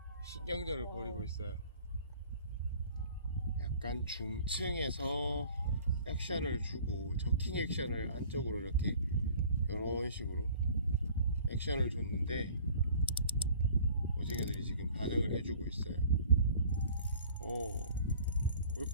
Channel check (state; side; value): inverted; both; correlation -0.50